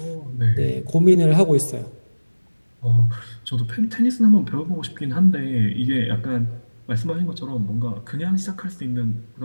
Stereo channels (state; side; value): inverted; both; correlation -1.00